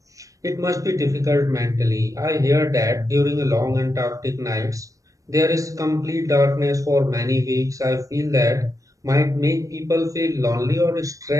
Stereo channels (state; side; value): late; left; 0.16 ms